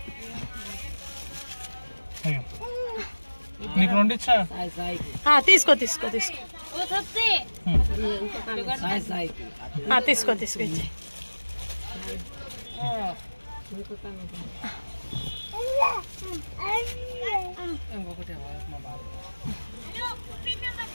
నీకు రెండు ఇచ్చా. తీసుకో తీసుకో తీసుకో తీసుకో తీసుకో ఇచ్చే.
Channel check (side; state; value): both; inverted; correlation -1.00